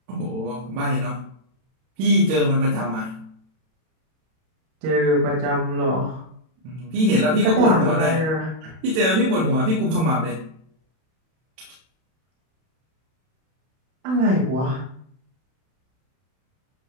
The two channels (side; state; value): left; late; 31 ms